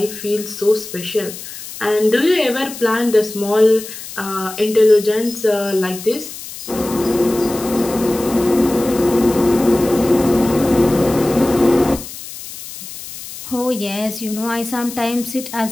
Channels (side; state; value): left; noise; hiss, 12 dB below the sound